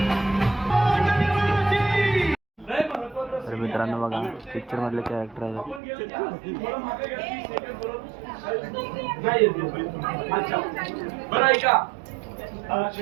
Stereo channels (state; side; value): drops out; left; at 5.8 s